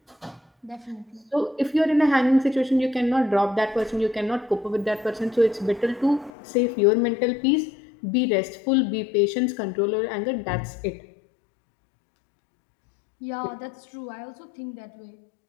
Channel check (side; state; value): right; drops out; at 6.3 s